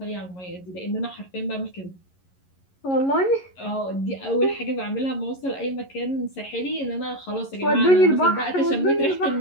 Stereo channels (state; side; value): late; right; 11 ms